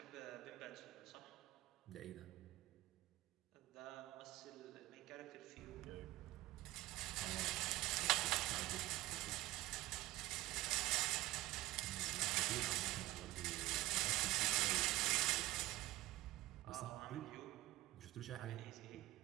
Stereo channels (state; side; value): quieter; left; 17.6 dB